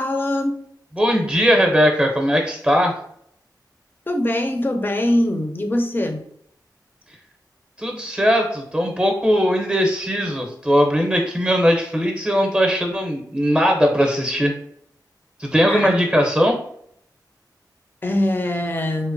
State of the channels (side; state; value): both; normal; correlation 0.87